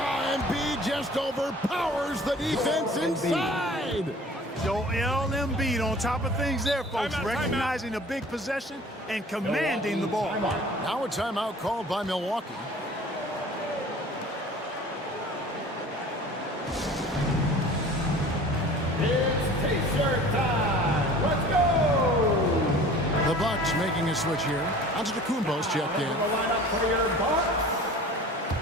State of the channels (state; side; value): normal; both; correlation 0.45